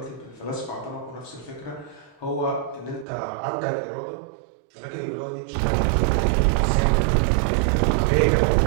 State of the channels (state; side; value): drops out; left; at 3.1 s